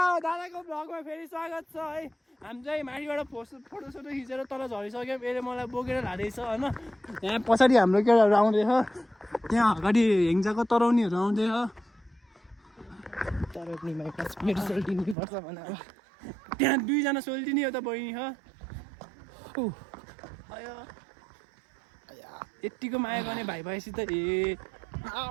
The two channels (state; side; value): drops out; left; at 15.2 s